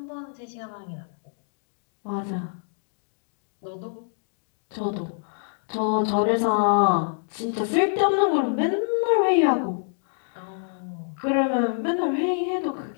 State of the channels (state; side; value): silent; right; digital silence